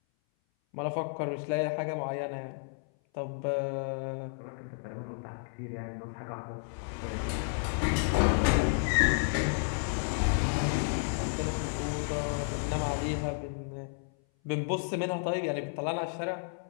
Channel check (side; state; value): right; silent; 57 dB below the other